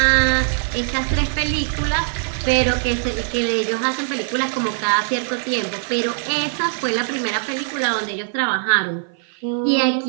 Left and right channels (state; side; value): silent; left; 55 dB below the other